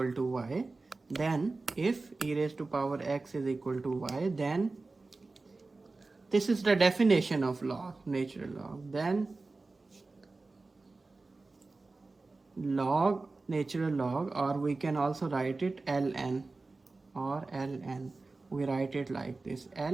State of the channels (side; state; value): left; quieter; 3.6 dB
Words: to y, then if e raised to power x is equal to y, then this is the definition of log, natural log. Then log, natural log, or we can also write it ln, or ln. We write it like this,